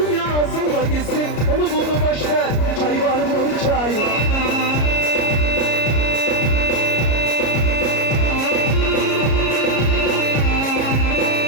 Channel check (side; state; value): right; late; 33 ms